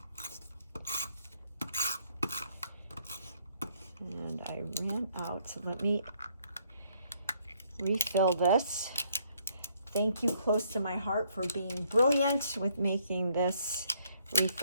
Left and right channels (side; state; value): both; inverted; correlation -0.68